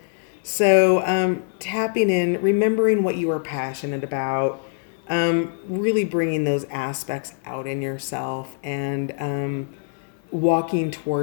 So tapping in, remembering what you are passionate about, really bringing those aspects out in yourself and walking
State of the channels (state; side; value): silent; right; 60 dB below the other